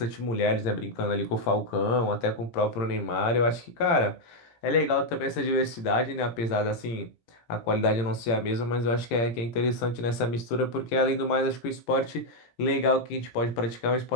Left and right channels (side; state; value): right; late; 17 ms